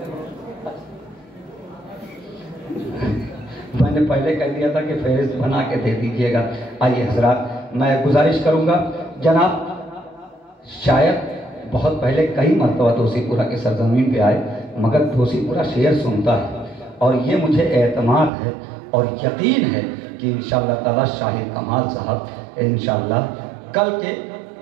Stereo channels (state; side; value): drops out; left; at 18.3 s